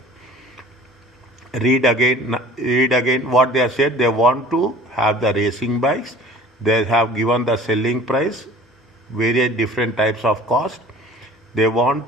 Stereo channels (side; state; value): both; normal; correlation 0.46